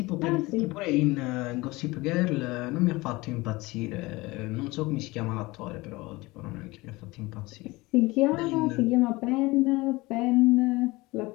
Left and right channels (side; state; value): right; quieter; 21.8 dB